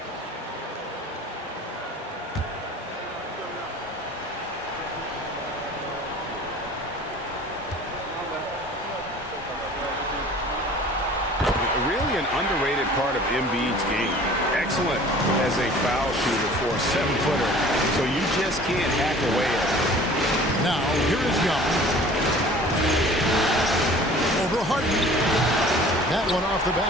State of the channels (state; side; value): normal; both; correlation 0.47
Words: Really an underrated part of Embiid's game. Excellent as a foul shooter for a 7-footer, so you just can't hack away at it. Now, here is Young. Over Harden. That one off the